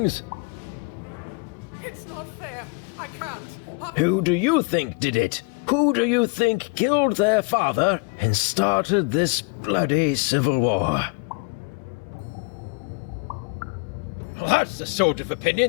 It's not fair. I can't. Who do you think did it? Who do you think killed their father and started this bloody civil war? That's the sort of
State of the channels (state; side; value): quieter; right; 31.4 dB